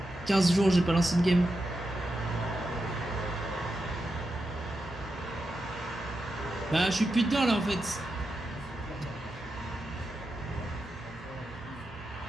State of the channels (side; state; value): both; normal; correlation 0.88